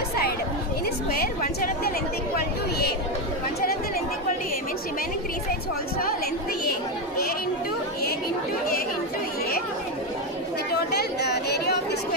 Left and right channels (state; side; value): normal; both; correlation 0.10